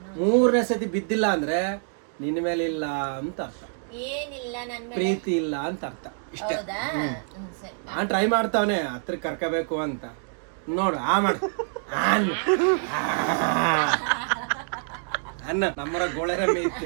3ನೇ ಸತಿ ಬಿದ್ದಿಲ್ಲ ಅಂದ್ರೆ ನಿನ್ನ ಮೇಲೆ ಇಲ್ಲ ಅಂತ ಅರ್ಥ, ಏನಿಲ್ಲ ನನ್ ಮೇಲೆ. ಪ್ರೀತಿ ಇಲ್ಲ ಅಂತ ಅರ್ಥ. ಇಷ್ಟೇ. ಹೌದಾ? ಸರಿ. ನಾನ್ ಟ್ರೈ ಮಾಡ್ತಾವನೆ ಹತ್ರ ಕರ್ಕೋಬೇಕು ಅಂತ. ನೋಡು ಮಾಡು ಅನ್ನ ನಮ್ಮರ ಗೋಳೆರಮ್ಮೆ ಇತ್ತು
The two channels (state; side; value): silent; left; 58 dB below the other